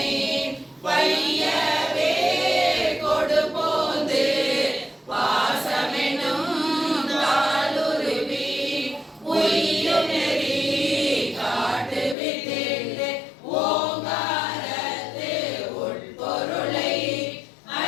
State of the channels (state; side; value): drops out; right; at 12.2 s